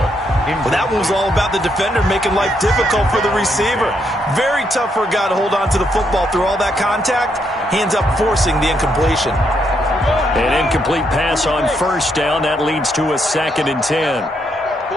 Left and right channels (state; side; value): normal; both; correlation 0.76